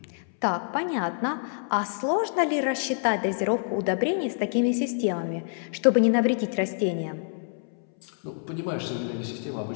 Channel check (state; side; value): silent; right; 60 dB below the other